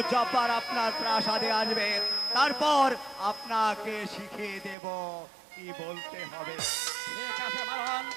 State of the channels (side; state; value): left; drops out; at 4.8 s